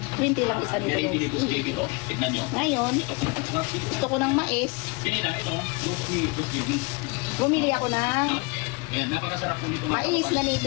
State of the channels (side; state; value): right; quieter; 28.5 dB